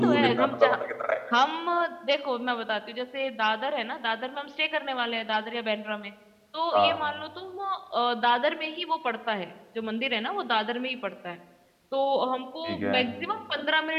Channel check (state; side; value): identical; both; correlation 1.00